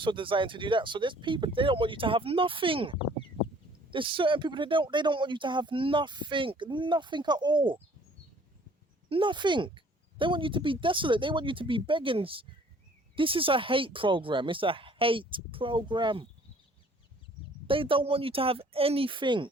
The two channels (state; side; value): normal; both; correlation 0.56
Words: designed to do that. So there's people, they don't want you to have nothing. There's certain people, they don't want you to have nothing at all. Nothing. They want you to be desolate. They want you to be begging. This is a hate program. It's a hate program. They don't want you to have anything.